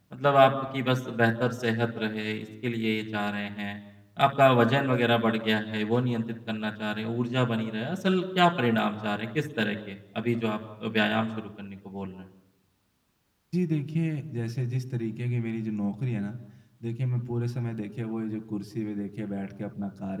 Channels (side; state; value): both; identical; correlation 1.00